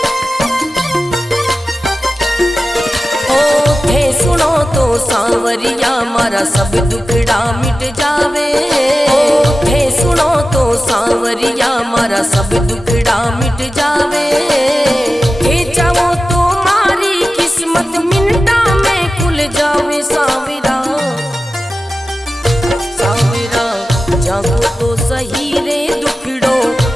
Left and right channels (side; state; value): both; normal; correlation 0.94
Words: सांवरिया मारा सब दुखड़ा मिट जावे, थे सुनो तो सांवरिया मारा सब दुखड़ा मिट जावे, थे चाहो तो मारी किस्मत मिनटा में खुल जावे। सांवरा सांवरा जागो तो सही रे दुखड़ो